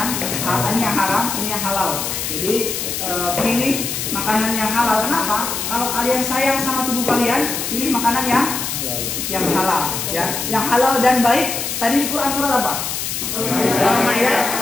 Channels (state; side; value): noise; left; hiss, 3 dB below the sound